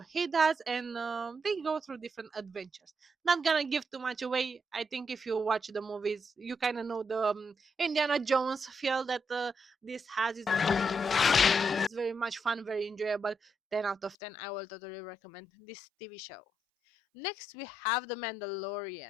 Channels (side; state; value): right; drops out; at 14.2 s